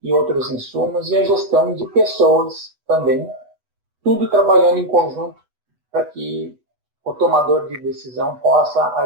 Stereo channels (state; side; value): late; left; 8.1 ms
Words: e outros insumos, e a gestão de pessoas também, tudo trabalhando em conjunto para que o tomador de decisão possa